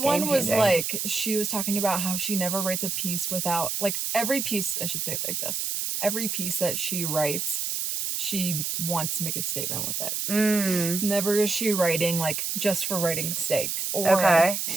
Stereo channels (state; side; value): noise; right; hiss, 1 dB below the sound